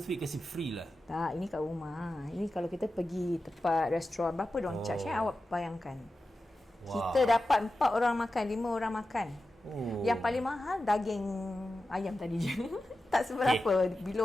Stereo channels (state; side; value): normal; both; correlation 0.93